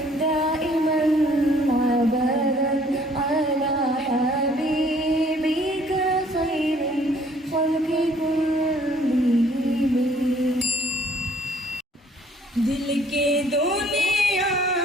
दाइमन अबदन अला हबीबिका खैरिल खल्क़ि कुल्लिहिम दिल के दुनिया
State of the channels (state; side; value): normal; both; correlation 0.60